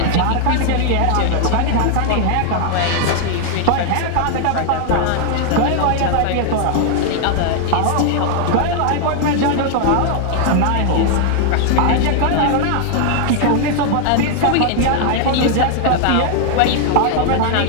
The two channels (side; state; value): both; different; correlation 0.00